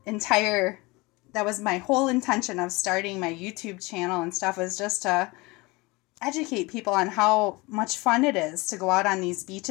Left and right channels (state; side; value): quieter; right; 24.0 dB